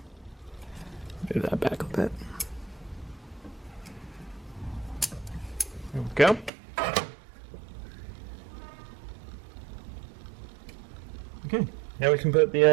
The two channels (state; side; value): drops out; left; at 6.5 s